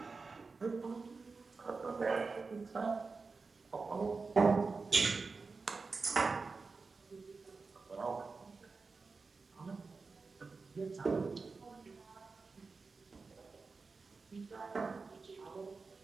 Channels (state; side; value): quieter; left; 4.3 dB